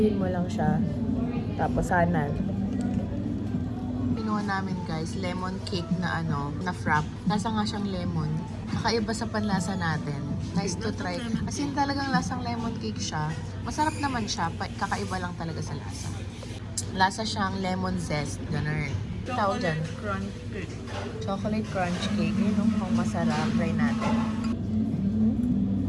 mo lang siya. Tapos, sana. Pinuha namin guys, lemon cake na na frap. Lasa nga siyang lemon. Kakaiba sa panlasa natin. Nice to try. As in talagang lasang lemon cake siya. Masarap naman siya. Kakaiba lang talaga sa lasa. Lasa siyang lemon zest. Ganun. Tawag dyan. Crunch cake. Chocolate crunch cake. Yun ang masarap. Try natin.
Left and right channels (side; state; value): both; identical; correlation 1.00